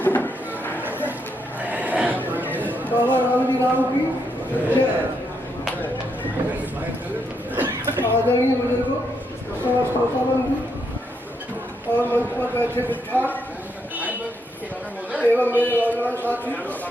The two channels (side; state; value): both; normal; correlation 0.78